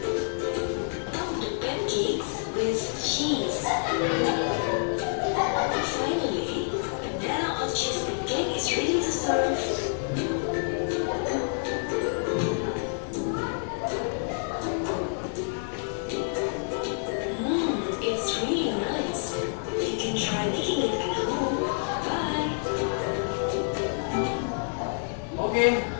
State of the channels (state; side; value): silent; right; digital silence